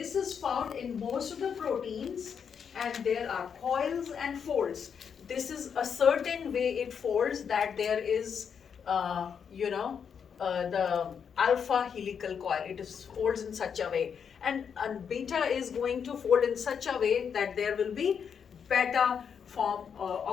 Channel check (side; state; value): right; quieter; 7.1 dB